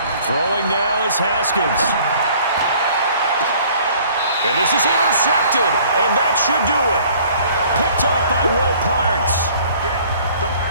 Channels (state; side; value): inverted; both; correlation -0.55